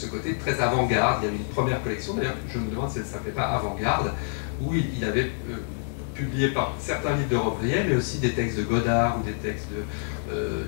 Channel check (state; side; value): silent; right; digital silence